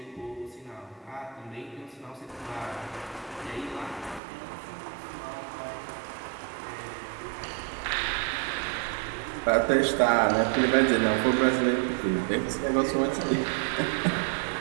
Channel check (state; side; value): drops out; left; at 4.2 s